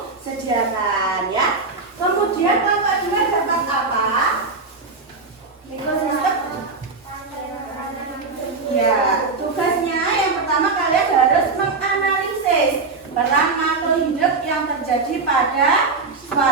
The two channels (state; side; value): quieter; left; 4.0 dB